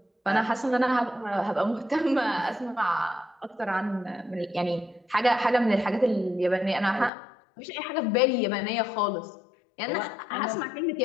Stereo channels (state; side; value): drops out; right; at 7.1 s